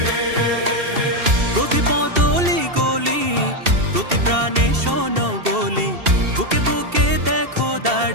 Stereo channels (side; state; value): left; late; 2.7 ms